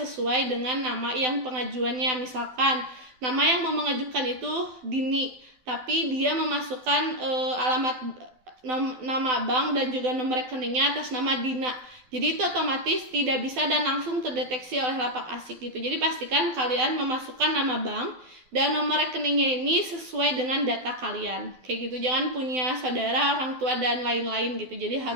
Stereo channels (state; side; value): late; left; 12 ms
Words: dengan nama yang pengajuannya. Misalkan nama yang mau mengajukan itu Dini, tapi dia memasukkan nama bank dan juga nomor rekeningnya atas nama Dina. Jadi itu otomatis tidak bisa dan langsung terdeteksi oleh lapak asik gitu. Jadi pastikan kalian memasukkan nama bank dan nomor rekeningnya ini sesuai dengan data kalian. Kayak gitu, jangan punya saudara, orang tua, dan lain-lain gitu. Jadi